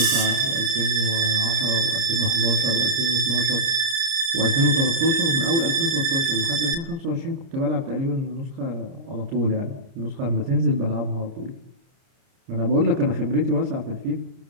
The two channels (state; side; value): late; left; 30 ms